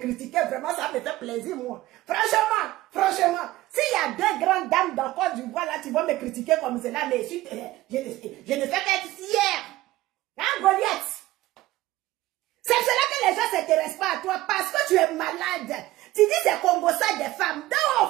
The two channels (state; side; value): quieter; left; 17.0 dB